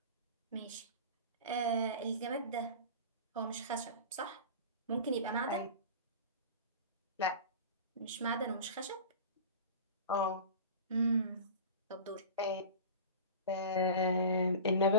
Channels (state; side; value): inverted; both; correlation -0.34